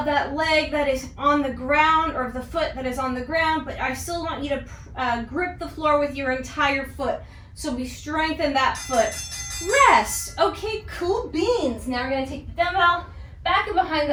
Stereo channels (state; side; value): identical; both; correlation 1.00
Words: that leg that is on the ground, or the foot that is on the ground, but I still want you to grip the floor with your entire foot. So we strengthen that foot. Rest. Okay, cool beans. Now we're going to take the dumbbell back and behind